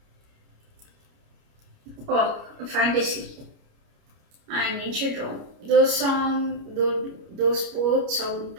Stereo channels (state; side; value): late; left; 29 ms